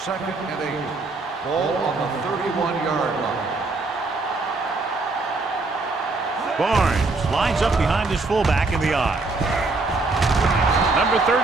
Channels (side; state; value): left; quieter; 3.5 dB